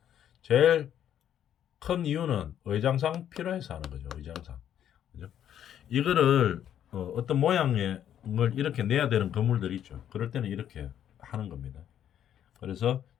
제일 큰 이유는 의장상 필요해서 하는 거죠. 의장상. 그죠? 이거를 어떤 모양의 걸 이렇게 내야 되는 건물들이 있죠. 그럴 때는 이렇게 하는 겁니다. 그래서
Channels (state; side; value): quieter; right; 10.2 dB